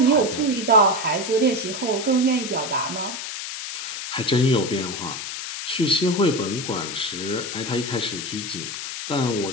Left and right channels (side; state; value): left; noise; hiss, 6 dB below the sound